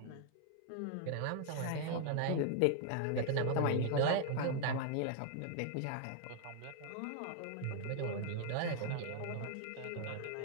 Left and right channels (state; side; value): different; both; correlation 0.00